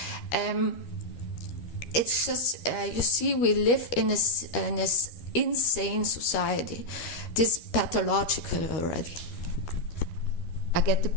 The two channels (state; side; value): late; right; 13 ms